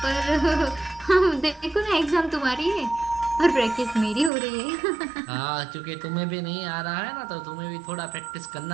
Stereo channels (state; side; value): drops out; left; at 4.3 s